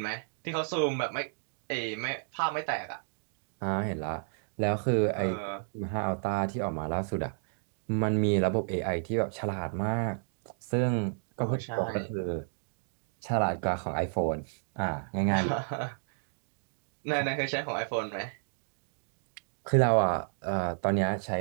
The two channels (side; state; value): left; silent; digital silence